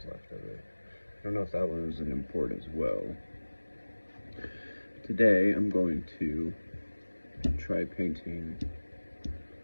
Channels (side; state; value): both; inverted; correlation -1.00